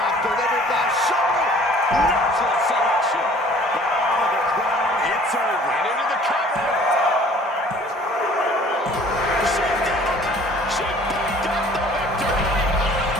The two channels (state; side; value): normal; both; correlation 0.52